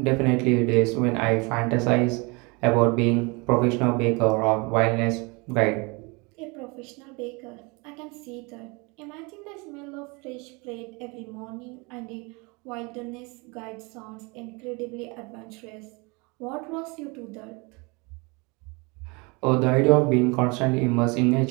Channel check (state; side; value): quieter; left; 28.6 dB